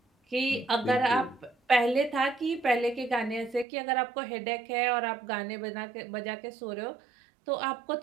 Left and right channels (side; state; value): left; drops out; at 3.7 s